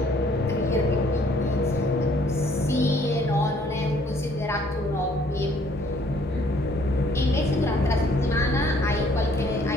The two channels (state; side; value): normal; both; correlation 0.62